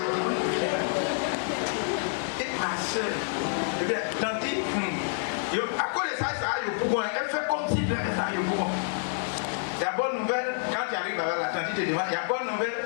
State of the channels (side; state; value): right; silent; 56 dB below the other